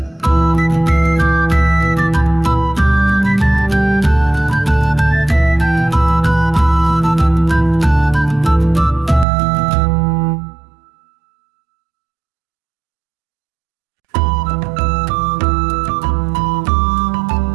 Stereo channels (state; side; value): drops out; left; at 9.2 s